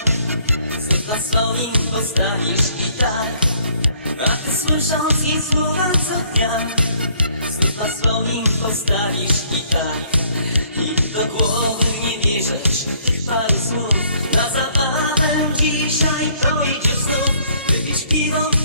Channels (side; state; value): both; inverted; correlation -0.64